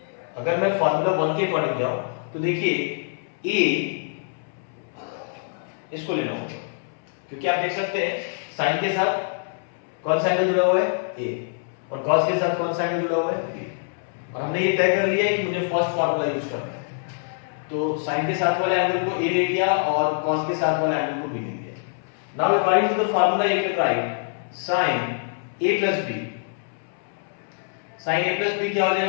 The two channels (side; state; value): right; silent; 62 dB below the other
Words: अकॉर्डिंग जाऊं, तो देखिए a इसको लेना होगा क्योंकि आप देख सकते हैं साइन के साथ कौन सा एंगल जुड़ा हुआ है? a, और कॉस के साथ कौन सा एंगल जुड़ा हुआ है? b। और हमने ये तय कर लिया है कि मुझे फर्स्ट फॉर्मूला यूज करना है, तो साइन के साथ वाले एंगल को a ले लिया और कॉस के साथ वाले एंगल को b ले लिया। Now according to the formula you can write sin a plus b। sin a plus b क्या हो